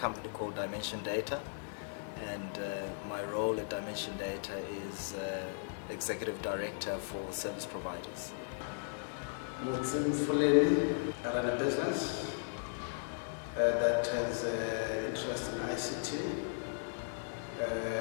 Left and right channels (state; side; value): silent; right; digital silence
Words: called Dimension Data, and my role at Dimension Data is Executive Director for Service Providers. Mutsim Fuleni, I run a business that has interest in ICT,